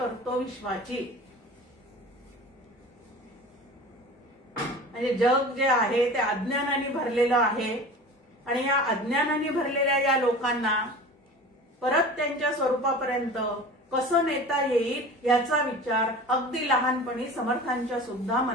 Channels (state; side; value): normal; both; correlation 0.37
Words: विश्वाची. म्हणजे जग जे आहे ते अज्ञानाने भरलेलं आहे. आणि या अज्ञानाने भरलेल्या या लोकांना परत त्यांच्या स्वरूपापर्यंत कसं नेता येईल याचा विचार अगदी लहानपणी समर्थांच्या सुद्धा